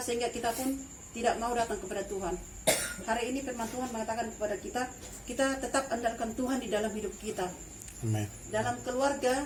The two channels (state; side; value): identical; both; correlation 1.00